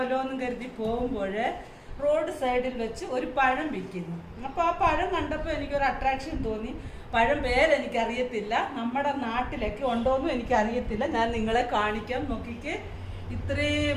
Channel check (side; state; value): both; identical; correlation 1.00